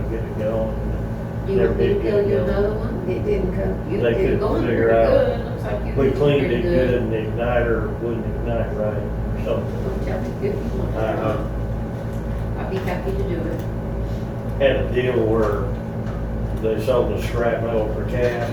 to get it going. you Never want me to did get tell it you going. another one? It didn't come. You They did couldn't going figure pretty out. good. Looks like you We did cleaned pretty it good, and the igniter wouldn't ignite right, or something. Well, tell me if you want. I'd be happy to do it. Had a deal where they sold the scrap metal for cash,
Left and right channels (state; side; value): identical; both; correlation 1.00